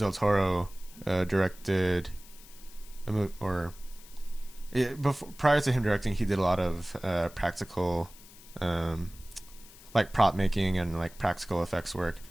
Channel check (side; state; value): left; noise; hiss, 21 dB below the sound